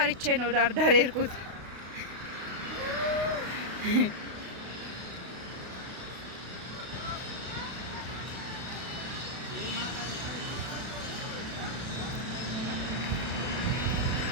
ነው ዳር የሄድኩት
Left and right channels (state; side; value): late; left; 32 ms